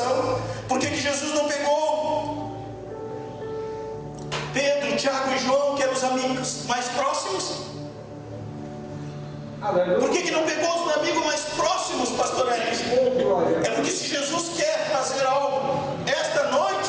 Por que Jesus não pegou Pedro, Tiago e João, que eram os amigos mais próximos? Por que não pegou os amigos mais próximos, pastor Elis? É porque se Jesus quer fazer algo esta noite,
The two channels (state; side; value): identical; both; correlation 1.00